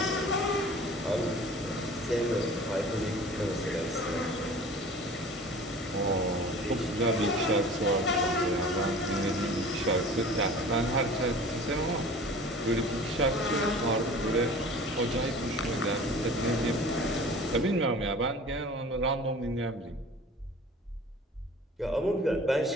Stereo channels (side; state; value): both; normal; correlation 0.43